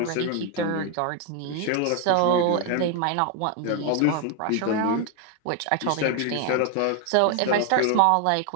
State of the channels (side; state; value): both; different; correlation 0.01